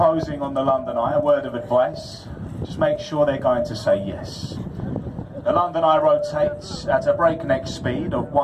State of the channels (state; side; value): identical; both; correlation 1.00